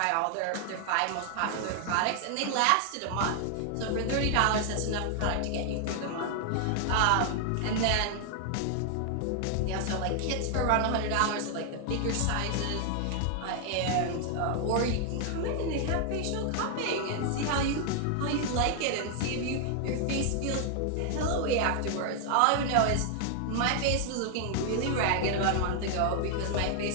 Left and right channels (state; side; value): different; both; correlation 0.00